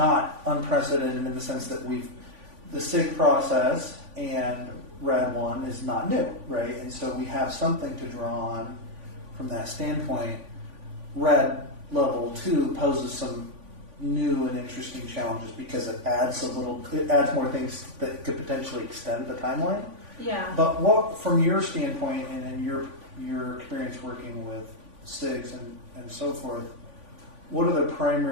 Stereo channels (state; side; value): late; left; 3.5 ms